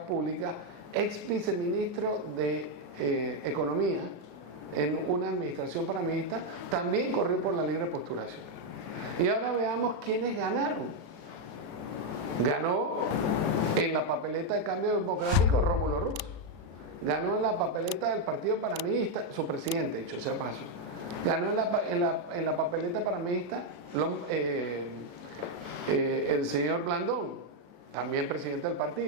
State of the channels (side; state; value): left; late; 36 ms